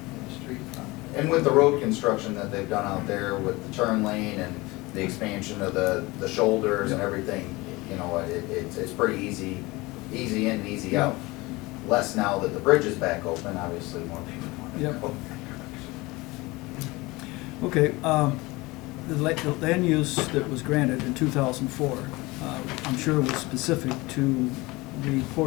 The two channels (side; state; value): right; quieter; 22.4 dB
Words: the street front. And with the road construction that they've done out there with the turn lane and the expansion of the shoulders and Yeah. everything, you know, it's pretty easy in and easy Yeah. out. Less now that the bridge is back open, obviously more people want to Yep. go. Okay, the land use that was granted in 2004, I'm sure was specific to the